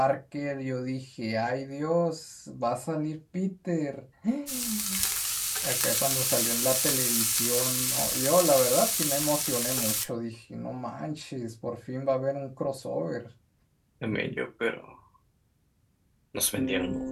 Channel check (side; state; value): both; identical; correlation 1.00